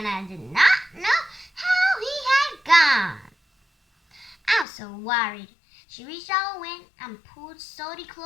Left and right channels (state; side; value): drops out; right; at 4.7 s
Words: I did not know how he had gone. I was so worried. She reached out a wing and pulled Salty